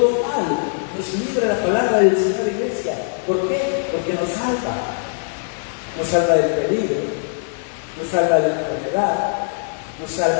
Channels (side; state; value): right; silent; digital silence